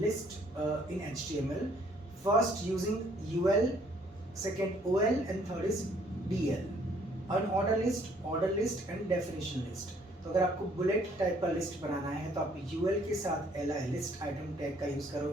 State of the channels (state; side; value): normal; both; correlation 0.63